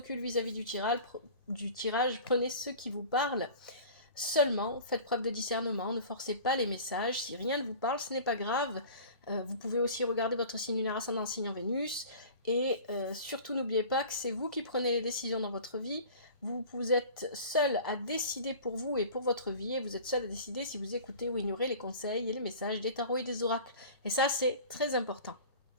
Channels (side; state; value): both; inverted; correlation -0.41